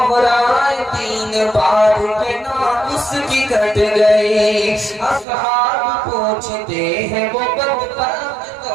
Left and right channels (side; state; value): left; drops out; at 5.2 s